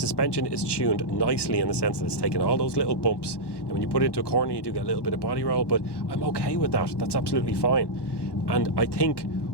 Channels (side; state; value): right; late; 1.1 ms